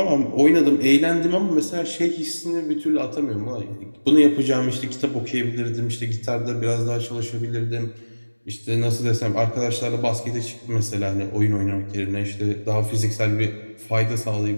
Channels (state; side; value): inverted; both; correlation -1.00